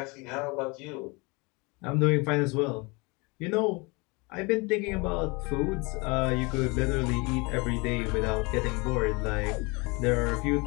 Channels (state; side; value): quieter; right; 27.6 dB